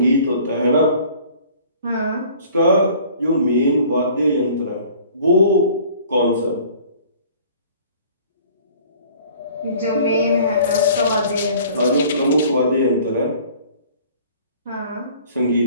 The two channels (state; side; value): inverted; both; correlation -0.51